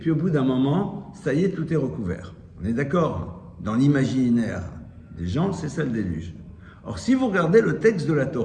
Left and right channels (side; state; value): both; identical; correlation 1.00